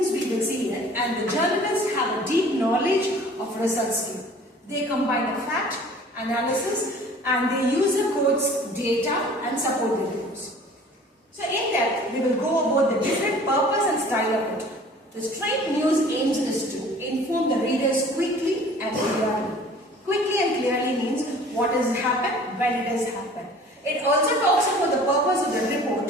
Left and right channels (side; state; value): both; normal; correlation 0.48